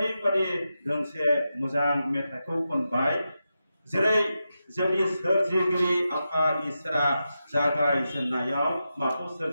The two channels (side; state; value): both; inverted; correlation -0.89